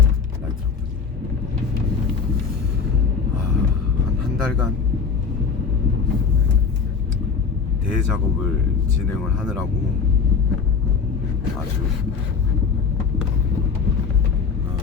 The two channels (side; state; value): right; quieter; 5.4 dB